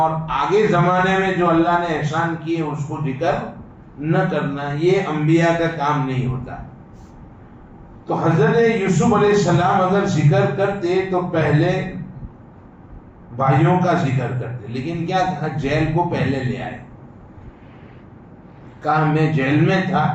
آگے زمانے میں جو اللہ نے احسان کیے اس کو ذکر نہ کرنا، یہ انبیاء کا کام نہیں ہوتا۔ تو حضرت یوسف علیہ السلام اگر ذکر کرتے تو پہلے بھائیوں کا ذکر کرتے، لیکن کیا کہا، جیل کو پہلے لے آئے۔ کہا میں جیل میں تھا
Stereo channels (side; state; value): both; identical; correlation 1.00